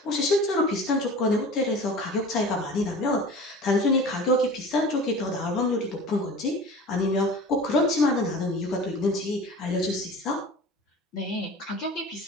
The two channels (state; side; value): normal; both; correlation 0.39